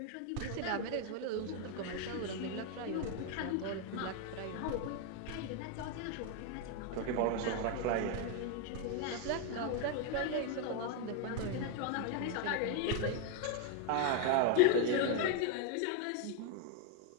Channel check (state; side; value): different; both; correlation 0.01